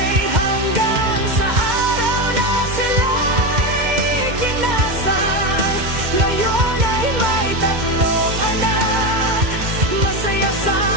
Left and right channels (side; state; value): left; late; 2.1 ms